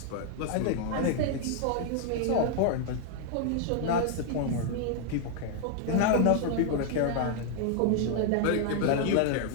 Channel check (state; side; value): different; both; correlation 0.00